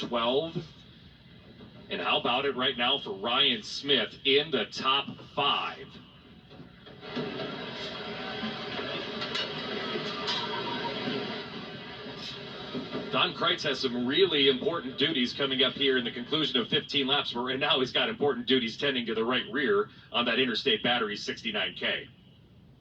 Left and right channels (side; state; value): both; identical; correlation 1.00